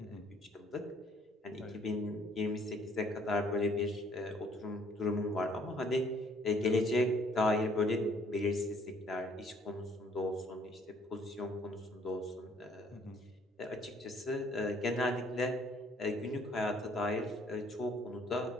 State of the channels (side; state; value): both; normal; correlation 0.62